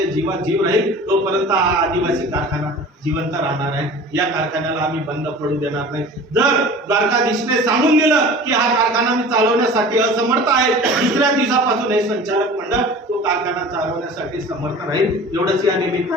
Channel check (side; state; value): both; normal; correlation 0.40